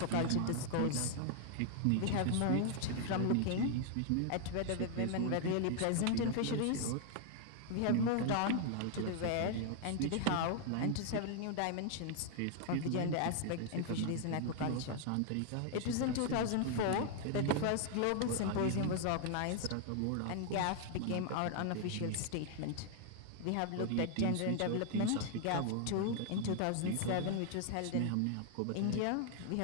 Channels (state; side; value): different; both; correlation 0.00